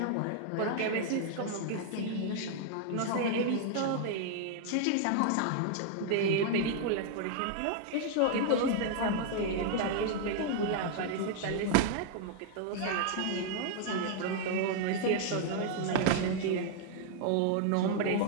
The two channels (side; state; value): both; different; correlation 0.00